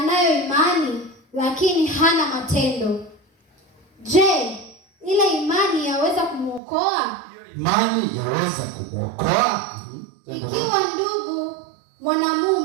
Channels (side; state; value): left; drops out; at 6.6 s